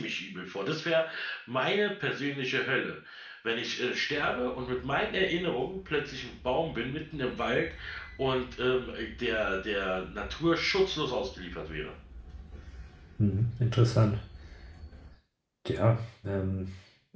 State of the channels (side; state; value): both; identical; correlation 1.00